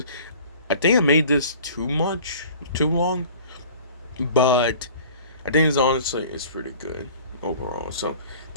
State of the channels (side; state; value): both; inverted; correlation -0.46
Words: I think I made this too long, but I think it's pretty good overall. So